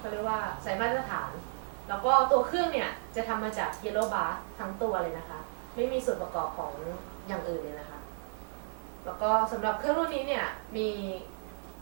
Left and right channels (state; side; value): silent; left; 56 dB below the other